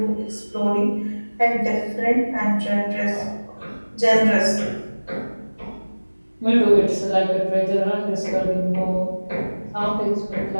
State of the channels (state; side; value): inverted; both; correlation -1.00